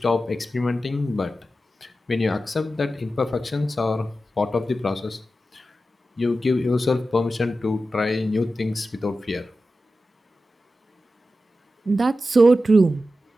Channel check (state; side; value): normal; both; correlation 0.92